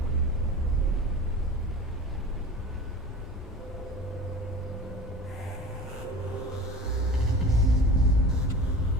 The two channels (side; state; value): both; normal; correlation 0.36